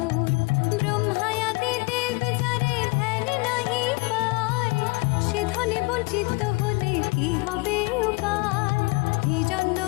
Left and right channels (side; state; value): right; quieter; 27.7 dB